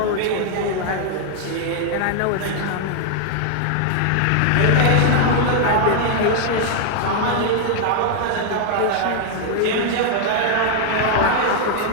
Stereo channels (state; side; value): different; both; correlation 0.00